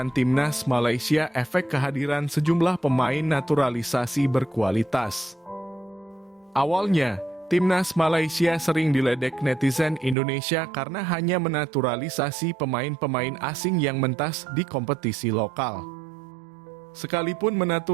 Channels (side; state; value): left; drops out; at 10.2 s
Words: timnas Malaysia efek kehadiran sejumlah pemain naturalisasi berkualitas. Awalnya, Timnas Malaysia sering diledek netizen Indonesia karena hanya menaturalisasi pemain-pemain asing yang mentas di kompetisi lokal. Sekalipun